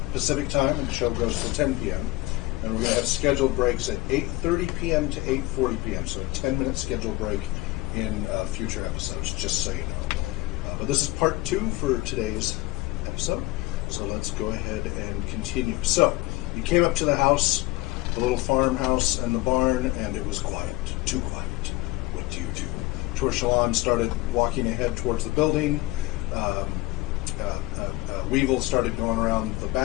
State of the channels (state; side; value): quieter; right; 19.8 dB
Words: Pacific time, and the show goes to 10 p.m. And we're going to have scheduled breaks at 8:30 p.m. to 8:40 p.m. So a 10-minute scheduled break in future episodes, just so you know. But this is part 2 for today's episode. So let's go ahead and continue. So, you came up to the house, the little farmhouse and the barn, and it was quiet. Too quiet. What do you do? Torshalon started walking ahead towards the building. Weevil started going around the